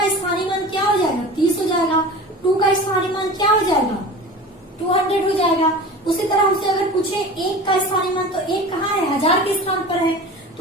स्थानीय मान क्या हो जाएगा 30 हो जाएगा, 2 का स्थानीय मान क्या हो जाएगा 200 हो जाएगा। उसी तरह हमसे अगर पूछे 1 का स्थानीय मान, तो 1 कहाँ है 1000 के स्थान पर है,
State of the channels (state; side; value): normal; both; correlation 0.35